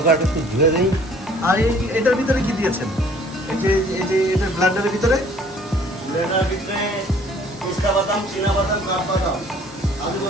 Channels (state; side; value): normal; both; correlation 0.56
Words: একটু ধুয়ে দেই। আর এটার ভিতরে কি দিয়েছেন? এই যে এটা ব্লেন্ডারের ভিতরে পিস্তা বাদাম, চীনা বাদাম, কাঠবাদাম, আলু